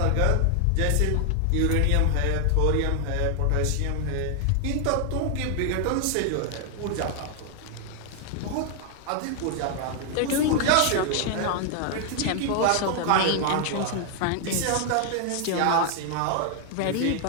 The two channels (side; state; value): both; different; correlation 0.00